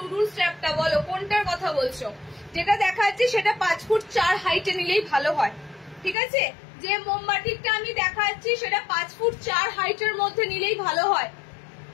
স্ট্র্যাপটা, বলো কোনটার কথা বলছো? যেটা দেখাচ্ছি সেটা 5 ফুট 4 হাইটে নিলেই ভালো হয়, ঠিক আছে? যে মোমবাটিকটা আমি দেখাচ্ছি সেটা 5 ফুট 4 হাইটের মধ্যে নিলেই ভালো হয়।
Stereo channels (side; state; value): right; drops out; at 6.2 s